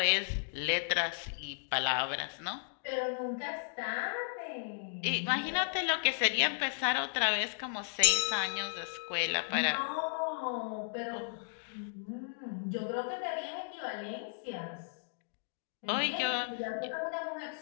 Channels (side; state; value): right; silent; digital silence